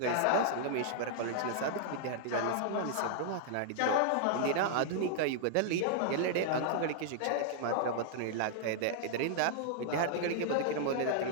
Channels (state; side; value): different; both; correlation -0.01